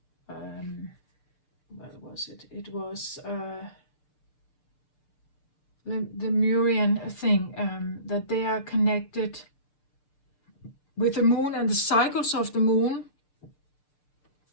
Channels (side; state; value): right; late; 6.9 ms